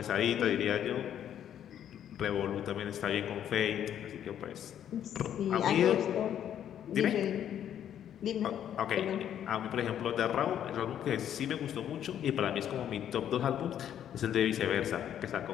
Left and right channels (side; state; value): right; quieter; 10.1 dB